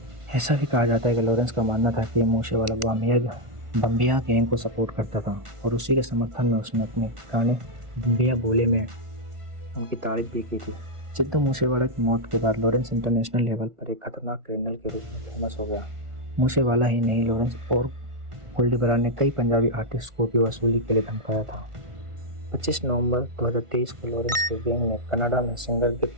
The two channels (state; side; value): late; left; 1.4 ms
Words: ऐसा भी कहा जाता है कि लॉरेंस का मानना था कि मूसेवाला बम्बिया गैंग को सपोर्ट करता था और उसी के समर्थन में उसने अपने गाने बम्बिया बोले में उनकी तारीफ भी की थी। सिद्धू मूसेवाला की मौत के बाद लॉरेंस इंटरनेशनल लेवल पर एक खतरनाक क्रिमिनल के रूप में फेमस हो गया। मूसेवाला ही नहीं, लॉरेंस और गोल्डी बरार ने कई पंजाबी आर्टिस्ट को भी वसूली के लिए धमकाया था। 25 नवंबर 2023 को लॉरेंस के गैंग ने कनाडा में सिंगर